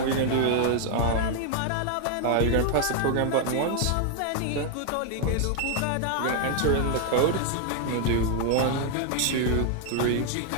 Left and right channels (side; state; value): both; different; correlation 0.00